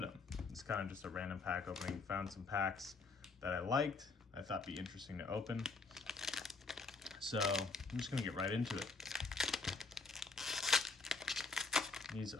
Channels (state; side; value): quieter; right; 4.1 dB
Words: them. It's kind of just a random pack opening. Found some packs that I liked, I thought be interesting to open. So I'm just gonna get right into it. These